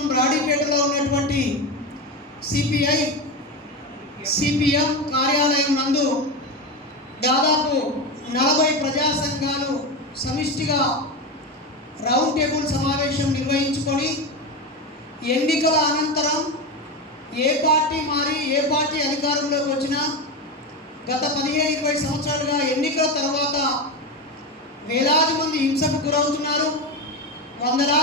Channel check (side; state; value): both; normal; correlation 0.18